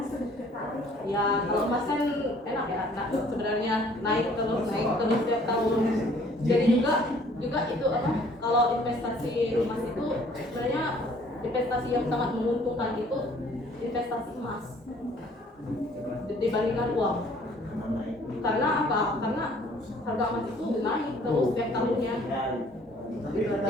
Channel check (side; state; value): both; normal; correlation 0.57